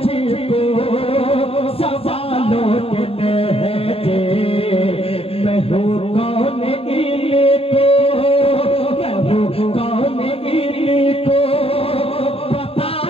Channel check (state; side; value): late; right; 0.28 ms